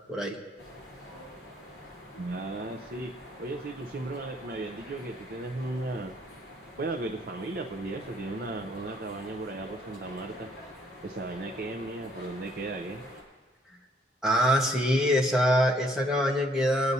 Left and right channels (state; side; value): normal; both; correlation 0.65